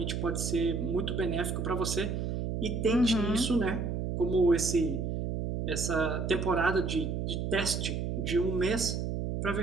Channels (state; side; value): noise; right; hum, 2 dB below the sound